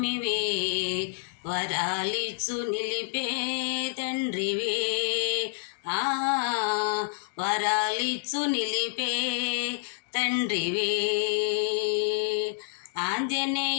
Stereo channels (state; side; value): silent; right; digital silence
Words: వరాలిచ్చు నిలిపే తండ్రివే, వరాలిచ్చు నిలిపే తండ్రివే.